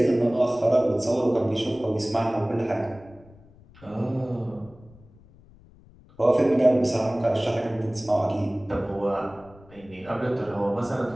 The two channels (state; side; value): noise; left; rumble, 25 dB below the sound